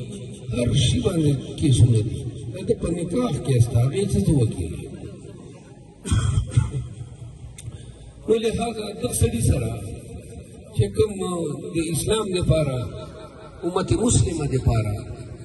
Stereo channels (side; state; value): both; identical; correlation 1.00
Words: هر شي باندې کیسونه دي د ده په نکاح کې ستا هغې څه ته وکړي نو لهذا دغه سړي سره چې کوم د اسلام دپاره امت مسلمه دپاره